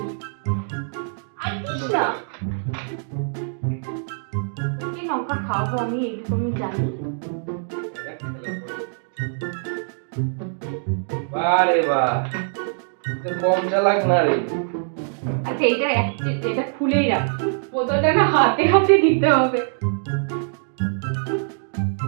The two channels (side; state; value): left; silent; digital silence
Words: আচ্ছা কি লঙ্কা খাবো আমি এইটুকু আমি জানি। বারে বাহ কম চালাক না রে। আচ্ছা এটা খুলেই রাখ, বোতলটা না হাতে হাতে দিতে হবে।